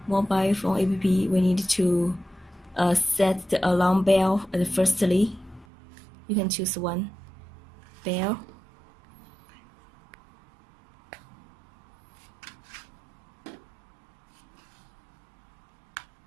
mobile phone app, we need to set the alarm bell firstly. You can choose one bell.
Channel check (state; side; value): drops out; left; at 5.7 s